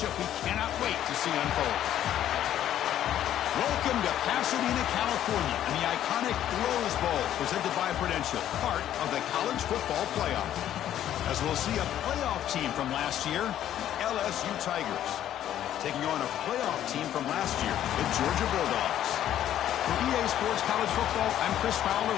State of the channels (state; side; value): quieter; right; 11.4 dB